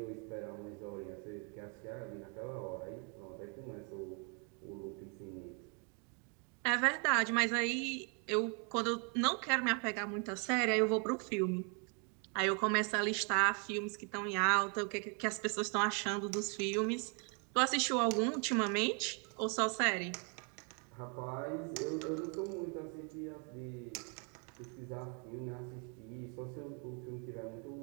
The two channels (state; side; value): quieter; left; 37.4 dB